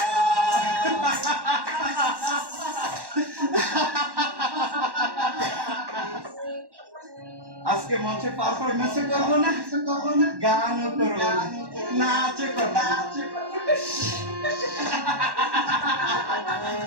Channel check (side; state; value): left; late; 1.1 ms